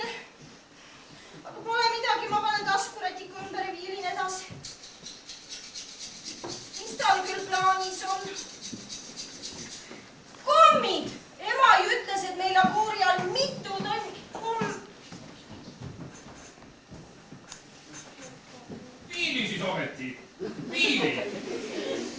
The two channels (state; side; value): identical; both; correlation 1.00